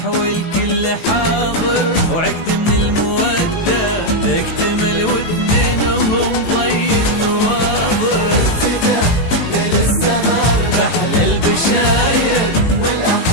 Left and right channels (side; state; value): right; late; 18 ms